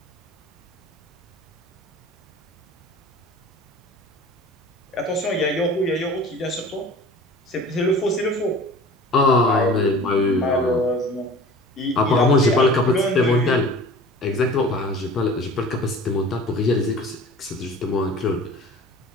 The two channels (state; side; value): normal; both; correlation 0.42